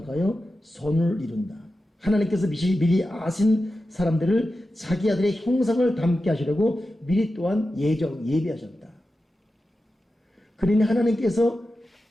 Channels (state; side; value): normal; both; correlation 0.92